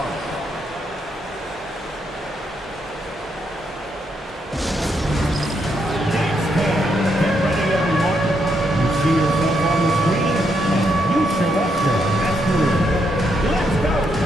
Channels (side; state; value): both; normal; correlation 0.78